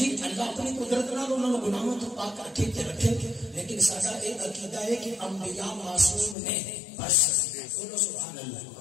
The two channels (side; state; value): right; drops out; at 6.4 s